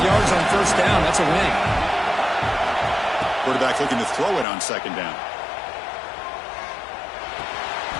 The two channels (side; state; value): right; drops out; at 4.5 s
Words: yards on first down, that's a win. Quarterback looking to throw it on second down.